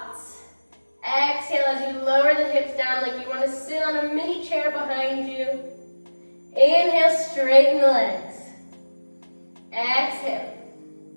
Exhale as you lower the hips down like you want to sit on a mini chair behind you. Inhale, straighten the legs. Exhale.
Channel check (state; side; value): inverted; both; correlation -1.00